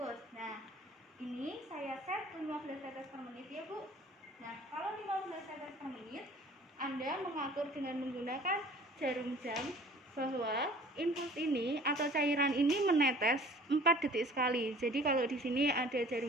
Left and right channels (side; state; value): both; normal; correlation 0.49